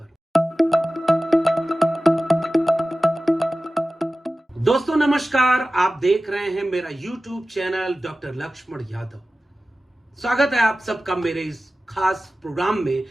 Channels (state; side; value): normal; both; correlation 0.96